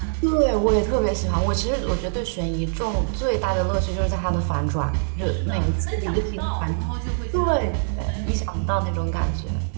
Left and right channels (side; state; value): left; silent; digital silence